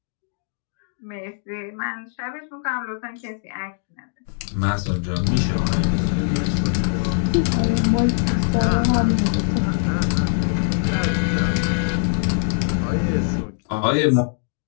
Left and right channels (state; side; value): silent; right; digital silence